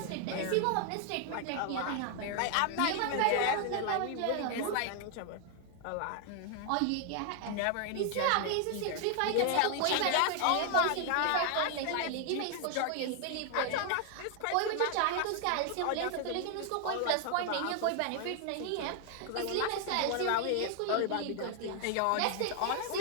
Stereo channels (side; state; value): both; different; correlation 0.00